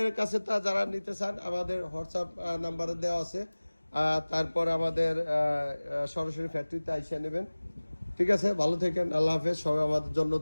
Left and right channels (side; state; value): both; inverted; correlation -1.00